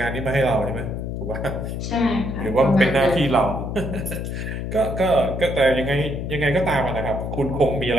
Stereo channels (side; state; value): left; noise; hum, 5 dB below the sound